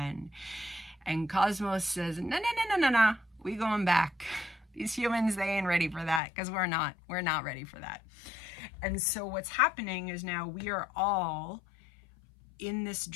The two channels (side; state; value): right; drops out; at 6.2 s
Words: And Cosmos says, no, we going back. These humans, they ain't ready for that, because we're not ready for that. And so what's happening is now we are all in this